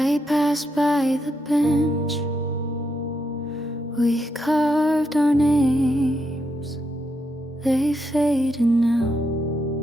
passed by the bench, we carved our names. They faded now,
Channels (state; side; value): normal; both; correlation 0.81